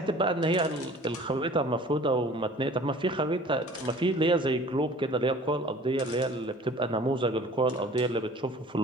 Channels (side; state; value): both; normal; correlation 0.48